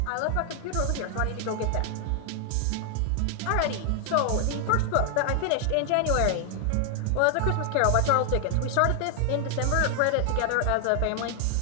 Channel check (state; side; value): different; both; correlation 0.00